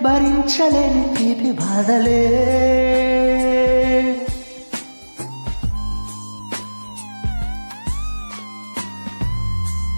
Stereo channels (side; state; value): both; inverted; correlation -1.00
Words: భరించలేని తీపి బాధలే.